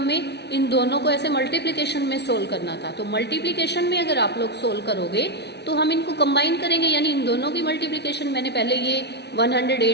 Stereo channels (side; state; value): right; late; 0.49 ms